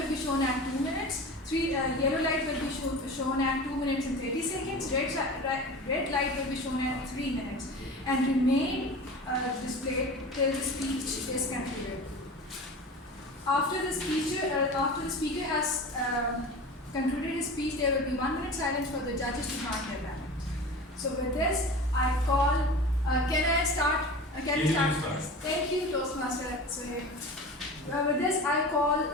be shown at 2 minutes. Yellow light will be shown at 2 minutes and 30 seconds. Red light will be shown at 3 minutes and remain displayed till the speech is concluded. After the speaker has concluded his speech, there will be 1 minute silence for the judges to mark their ballot. So with this, I call. Can I start? Can we start? Thank you, Toastmaster Sohaib. With this, I call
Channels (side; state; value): both; normal; correlation 0.34